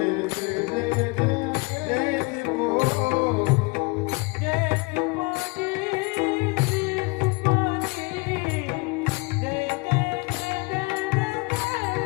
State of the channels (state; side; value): quieter; right; 28.1 dB